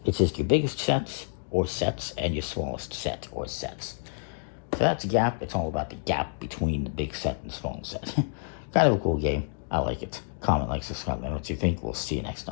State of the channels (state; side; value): silent; right; digital silence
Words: It's just your biggest sets or sets and your smallest set or sets. So that's Gap. It's all about the gap between the big set and small set. Kind of a cool game. I like it. Comment, like, subscribe, and what you think. We'll see you next